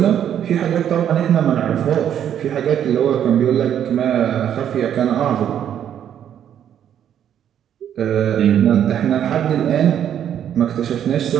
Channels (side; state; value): left; quieter; 9.7 dB